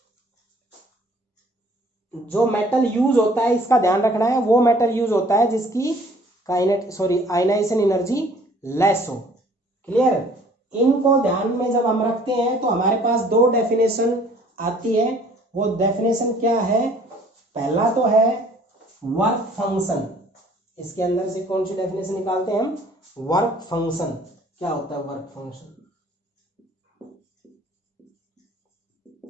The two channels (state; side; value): normal; both; correlation 0.56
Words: जो मेटल यूज होता है इसका ध्यान रखना है, वो मेटल यूज होता है जिसकी आयनाइजेशन एनर्जी लेस हो। क्लियर? इनको ध्यान में जब हम रखते हैं तो हमारे पास दो डेफिनेशन आती है। वो डेफिनेशन क्या है? पहला तो है वर्क फंक्शन। इसके अंदर से कौन सी डेफिनेशन निकालते हैं हम? Work function. क्या होता है वर्क फंक्शन?